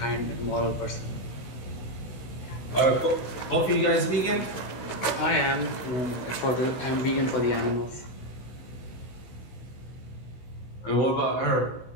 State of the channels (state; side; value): late; right; 16 ms